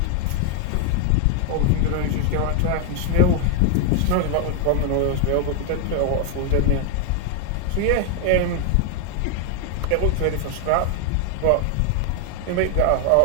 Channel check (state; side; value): different; both; correlation 0.00